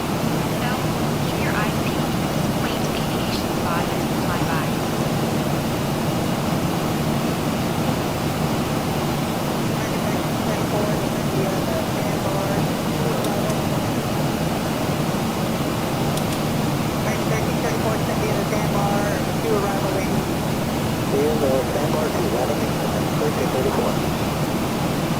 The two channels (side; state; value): both; identical; correlation 1.00